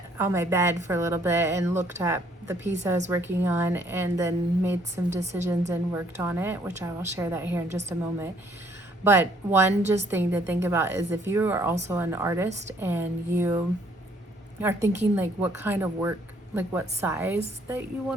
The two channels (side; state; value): both; normal; correlation 0.64